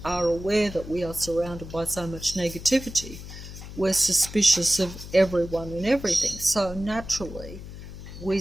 are aware that we are surrounded by so much negativity, we're suspicious of everyone and everything. So naturally, we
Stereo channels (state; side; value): noise; left; hum, 12 dB below the sound